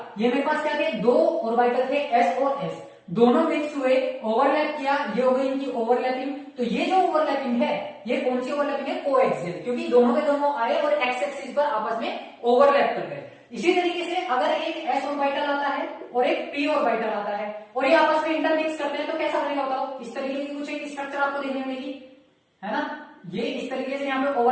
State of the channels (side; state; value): both; identical; correlation 1.00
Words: ये मेरे पास क्या थे, दो ऑर्बिटल थे एस और एस, दोनों मिक्स हुए, ओवरलैप किया, ये हो गई इनकी ओवरलैपिंग। तो ये जो ओवरलैपिंग है ये कौन सी ओवरलैपिंग है, कोएक्सियल, क्योंकि दोनों के दोनों आए और एक्स एक्सिस पर आपस में ओवरलैप कर गए। इसी तरीके से अगर एक एस ऑर्बिटल आता है और एक पी ऑर्बिटल आता है और ये आपस में इंटरमिक्स करते हैं तो कैसा बनेगा बताओ, इस तरीके की कुछ एक स्ट्रक्चर आपको देखने मिलेगी, है ना। ये इस तरीके से यहाँ पे